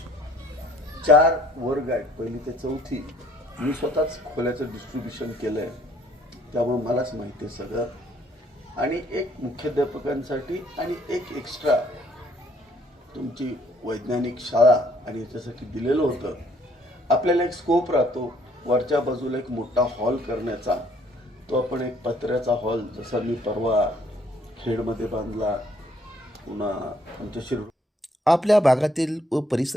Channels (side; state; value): both; normal; correlation 0.63